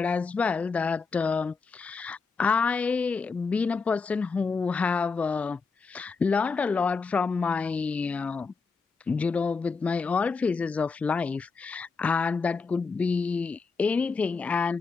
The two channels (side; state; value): right; quieter; 4.7 dB